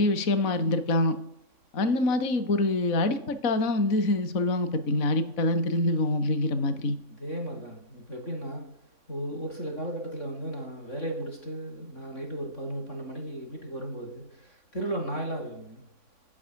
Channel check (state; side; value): late; right; 3.6 ms